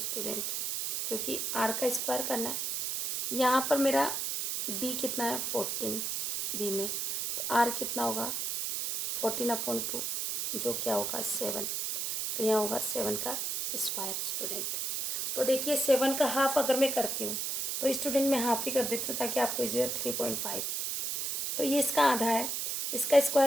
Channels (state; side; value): noise; right; hiss, 1 dB below the sound